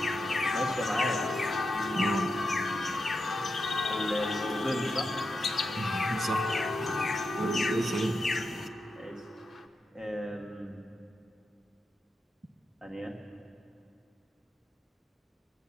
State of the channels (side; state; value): both; normal; correlation 0.86